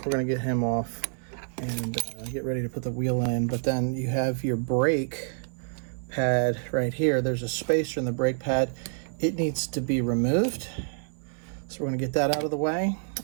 we're going to get him off and get ready to put the wheel in. But then you have your brake pad right here. There's a spacer in the brake pad. It needs to be removed. So we're going to get that out of the way.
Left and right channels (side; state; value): left; silent; digital silence